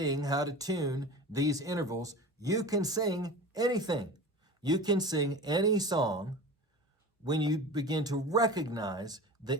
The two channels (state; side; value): normal; both; correlation 0.34